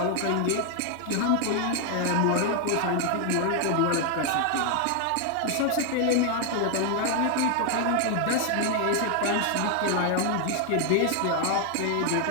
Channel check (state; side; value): different; both; correlation 0.00